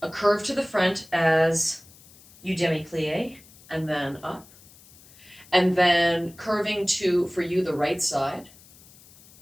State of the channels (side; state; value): left; noise; hiss, 24 dB below the sound